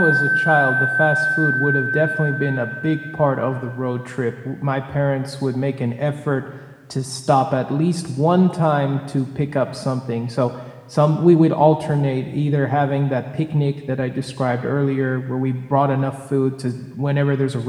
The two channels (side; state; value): both; identical; correlation 1.00